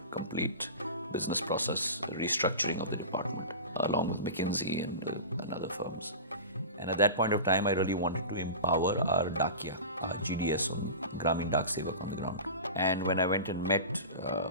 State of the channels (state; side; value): inverted; both; correlation -0.31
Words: complete business process restructuring of the department. along with McKinsey and other firms. And at that point of time, I really wanted to empower our Dakia, our GDS, on Gramin Dak Sevak on the ground. And when I went and met